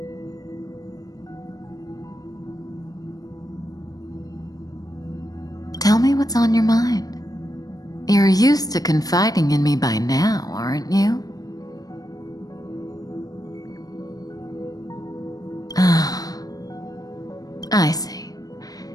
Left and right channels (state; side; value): late; right; 0.18 ms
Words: Tell me what's on your mind. You're used to confiding in me by now, aren't you? Ah, I see.